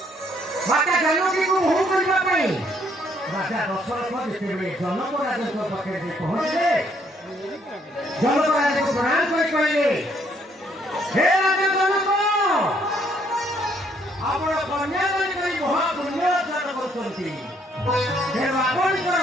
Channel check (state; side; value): normal; both; correlation 0.68